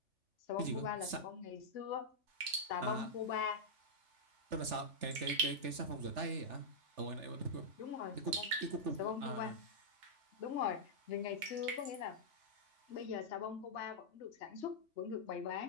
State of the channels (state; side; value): late; left; 3.4 ms